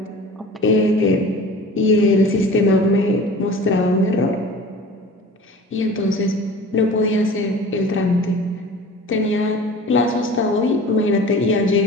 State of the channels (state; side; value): normal; both; correlation 0.40